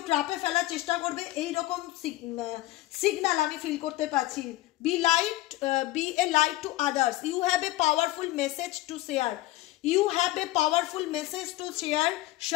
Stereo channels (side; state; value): right; quieter; 17.6 dB